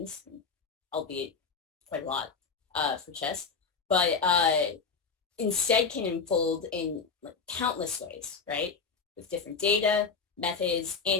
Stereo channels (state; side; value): quieter; right; 5.3 dB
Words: albeit quite a lot for chess, but instead can unfold in like, countless ways, right? With different data, methods,